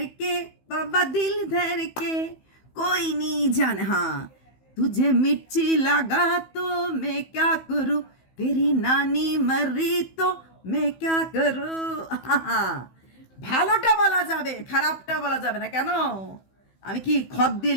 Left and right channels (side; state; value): right; late; 15 ms